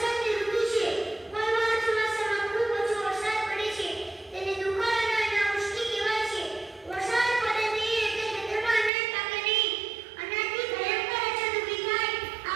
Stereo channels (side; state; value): left; drops out; at 8.9 s